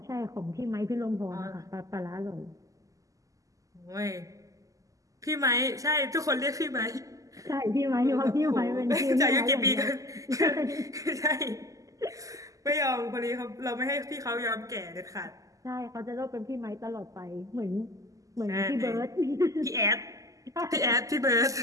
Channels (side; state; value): left; late; 0.16 ms